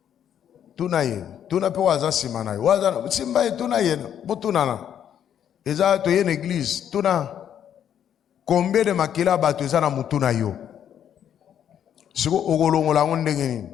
Tuna ye, tuna pe waza sima na ye. Waza simba ye tuna ye, bo tuna na. Eza to ye na église, tuna combien de makila bato eza na mutu na yo. Siko okolongola ngondeni.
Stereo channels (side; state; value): right; quieter; 9.5 dB